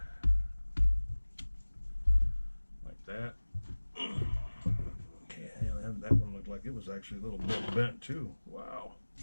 Like that. Okay, that one looked like it was actually a little bit bent too. Wow.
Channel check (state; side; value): inverted; both; correlation -1.00